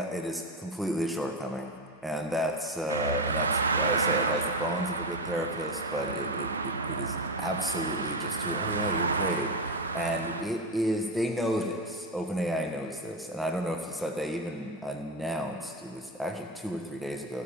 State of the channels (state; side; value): normal; both; correlation 0.14